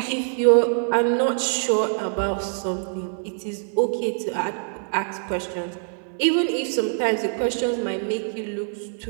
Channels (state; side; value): silent; left; digital silence